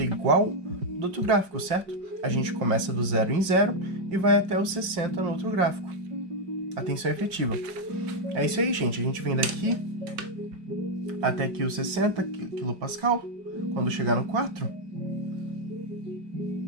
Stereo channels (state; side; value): late; left; 5.2 ms